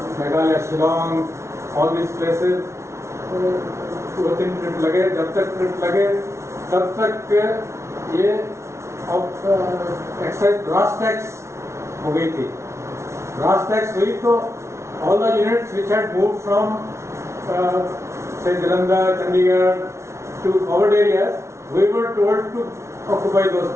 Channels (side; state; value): left; late; 0.13 ms